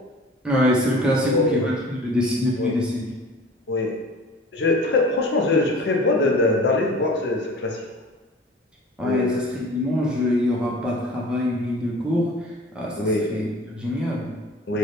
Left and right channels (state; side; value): normal; both; correlation 0.42